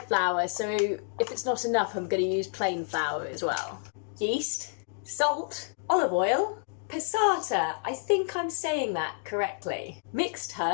flour, so if it's not enough, I'm going to use plain flour as well. Yeast, salt, olive oil, passata, I think I'm saying that correctly. Mixed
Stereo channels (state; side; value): silent; right; digital silence